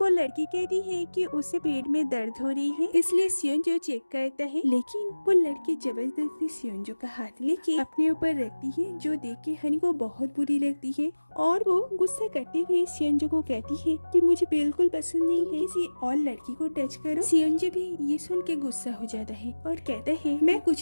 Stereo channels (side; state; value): both; inverted; correlation -1.00